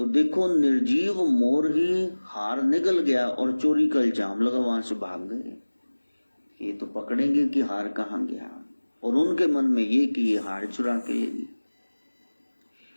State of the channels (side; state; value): both; inverted; correlation -1.00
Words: देखो निर्जीव मोर ही हार निगल गया और चोरी का इल्जाम लगा, वहां से भाग गए। ये तो पकड़ेंगे कि हार कहां गया, और उनके मन में ये कि ये हार चुरा के लेगी।